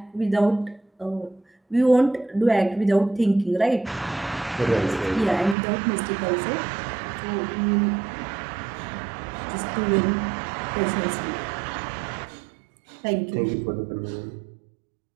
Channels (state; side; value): drops out; left; at 5.6 s